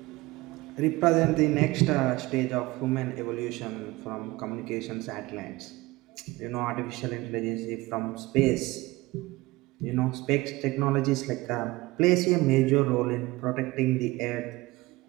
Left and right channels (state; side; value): quieter; left; 20.5 dB